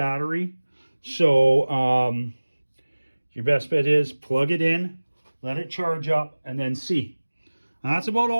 So your best bet is plug it in, let it charge up, and then see. That's about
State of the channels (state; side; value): inverted; both; correlation -1.00